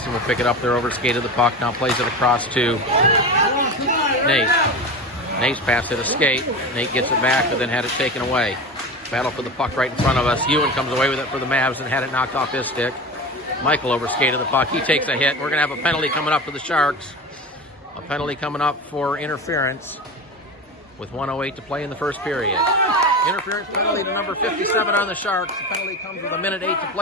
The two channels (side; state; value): both; normal; correlation 0.27